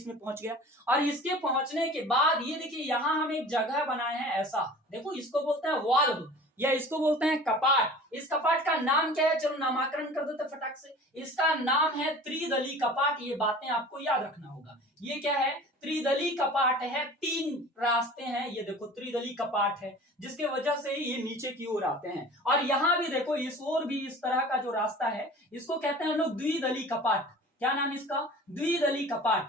पहुंच गया और इसके पहुंचने के बाद ये देखिए, यहां हम एक जगह बनाए हैं ऐसा। देखो, इसको बोलते हैं वाल्व या इसको बोलते हैं कपाट। इस कपाट का नाम क्या है? चलो नामकरण कर देते फटाक से। इसका नाम है त्रिदली कपाट। ये बातें आपको याद रखना होगा। ये क्या है? त्रिदली कपाट है। 3 रास्ते हैं। ये देखो, त्रिदली कपाट है जिसके वजह से ये नीचे की ओर आते हैं। और यहां भी देखो, इस ओर भी इस तरह का जो रास्ता है, इसको कहते हैं हम लोग द्विदली कपाट। क्या नाम इसका? द्विदली कपाट।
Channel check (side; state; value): both; normal; correlation 0.42